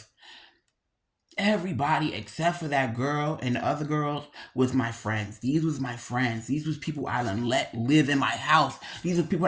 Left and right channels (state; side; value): identical; both; correlation 1.00